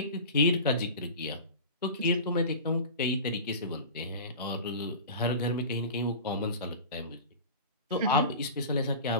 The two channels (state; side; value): inverted; both; correlation -0.34